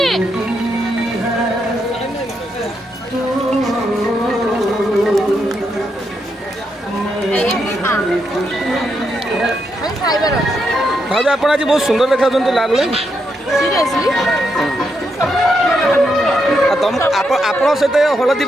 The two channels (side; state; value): both; normal; correlation 0.81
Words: भाभी आप आज बहुत सुंदर देखा लागले तुम आप सहित हलदी